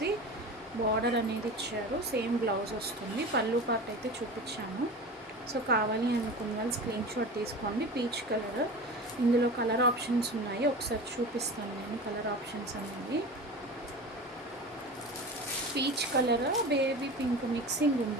బార్డర్ అనేది ఇచ్చారు. సేమ్ బ్లౌజ్ వస్తుంది. పళ్ళు పార్ట్ అయితే చూపించాను. సో కావాలి అనుకున్న వాళ్ళు స్క్రీన్ షాట్ తీసుకోండి. పీచ్ కలర్, ఇందులో కలర్ ఆప్షన్స్ ఉన్నాయి, ఒకసారి చూపిస్తాను నేను. కలర్ ఆప్షన్స్ అనేవి peach colour, baby pink mixing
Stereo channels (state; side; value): normal; both; correlation 0.32